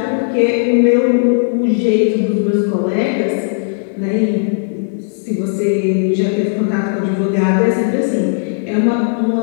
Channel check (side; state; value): right; silent; digital silence